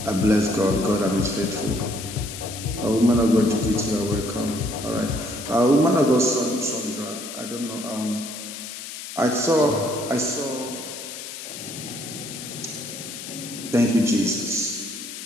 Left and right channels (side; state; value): left; noise; hiss, 10 dB below the sound